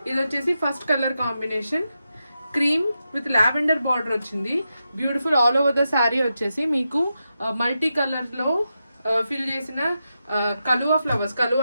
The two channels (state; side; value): inverted; both; correlation -0.88